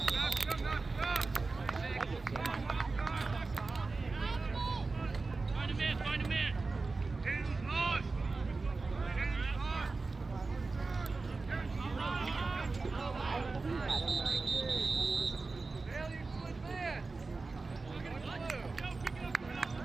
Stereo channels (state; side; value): quieter; left; 3.8 dB